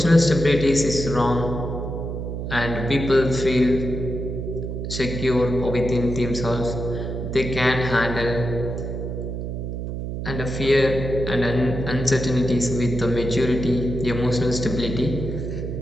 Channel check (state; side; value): noise; right; hum, 5 dB below the sound